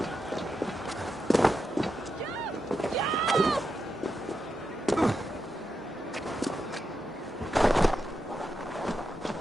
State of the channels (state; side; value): normal; both; correlation 0.86